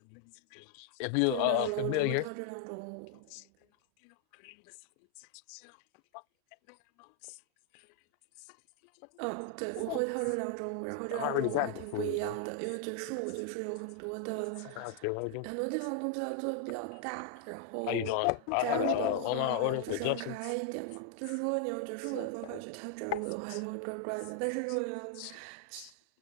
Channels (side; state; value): both; different; correlation 0.00